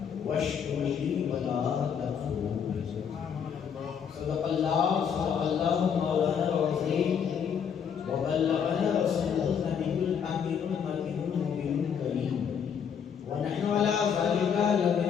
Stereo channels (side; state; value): right; quieter; 7.5 dB